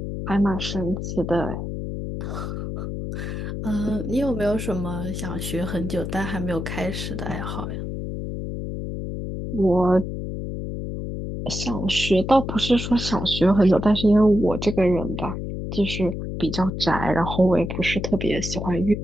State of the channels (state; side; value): noise; left; hum, 5 dB below the sound